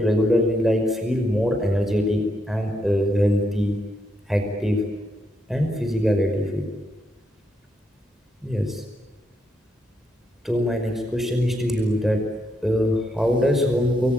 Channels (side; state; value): both; normal; correlation 0.78